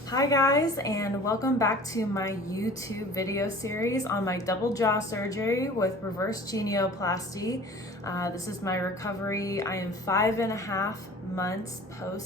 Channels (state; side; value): normal; both; correlation 0.44